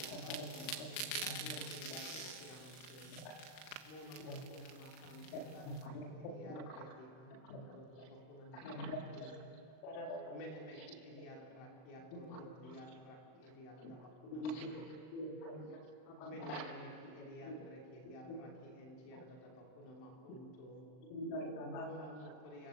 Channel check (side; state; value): right; late; 39 ms